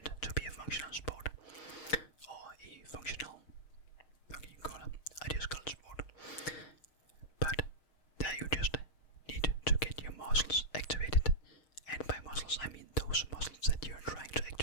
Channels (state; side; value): late; right; 6.4 ms